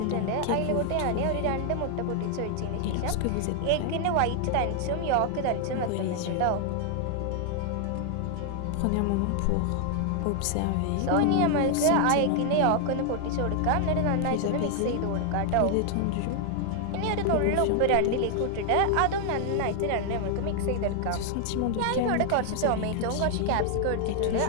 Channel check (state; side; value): different; both; correlation 0.00